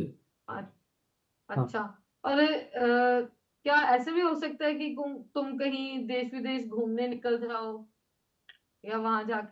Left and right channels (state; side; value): identical; both; correlation 1.00